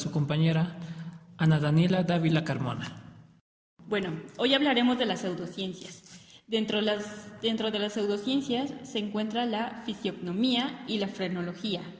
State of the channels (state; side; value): identical; both; correlation 1.00